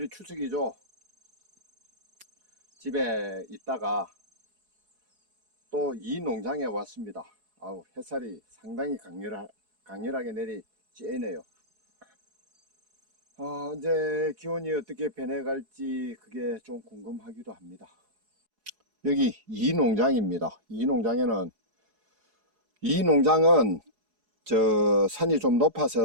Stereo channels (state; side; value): late; left; 4.8 ms